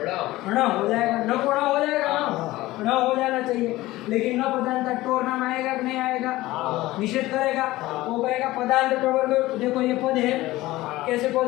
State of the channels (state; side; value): quieter; right; 17.8 dB